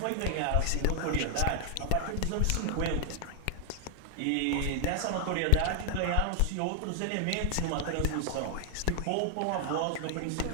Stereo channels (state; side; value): different; both; correlation 0.00